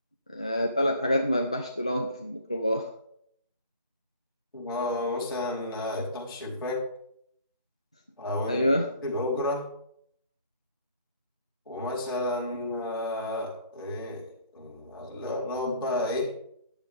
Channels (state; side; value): inverted; both; correlation -0.55